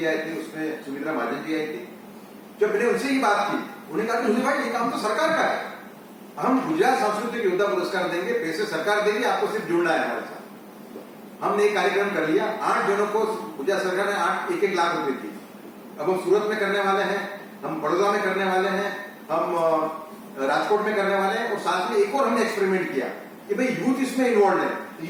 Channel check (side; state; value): both; identical; correlation 1.00